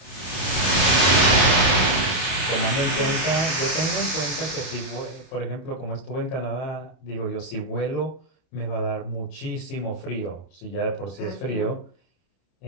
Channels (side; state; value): right; late; 31 ms